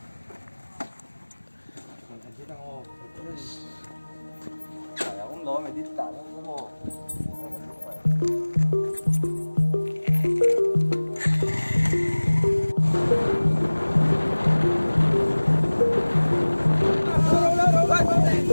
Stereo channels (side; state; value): both; inverted; correlation -1.00